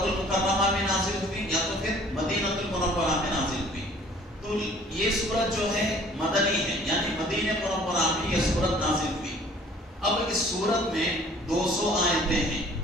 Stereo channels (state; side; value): normal; both; correlation 0.53